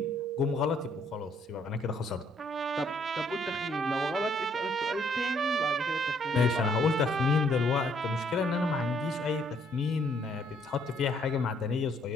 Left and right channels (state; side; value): normal; both; correlation 0.67